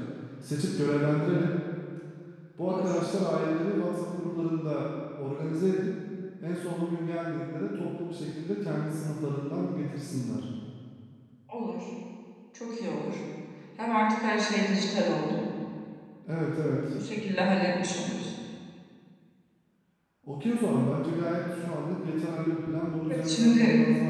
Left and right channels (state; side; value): identical; both; correlation 1.00